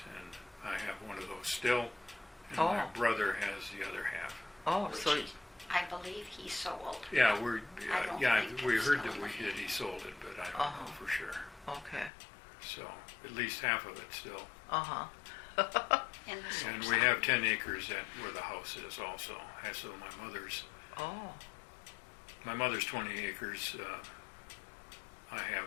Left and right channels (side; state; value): right; drops out; at 12.1 s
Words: and I have one of those still, and my brother has the other half. Oh, Which so I believe he sold. Yeah, I don't think we it's heard that still he sold it, but I don't know for sure. okay. So at least half of it still. In the And Sopscak. we have 10 acres at where the house is also. So my mother's 20 acres. I